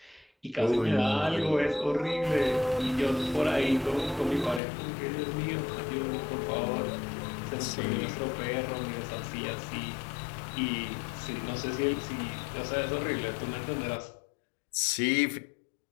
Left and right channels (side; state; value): right; drops out; at 4.6 s